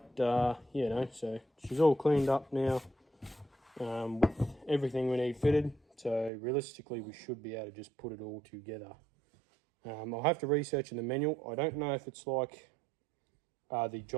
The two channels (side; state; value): left; drops out; at 6.3 s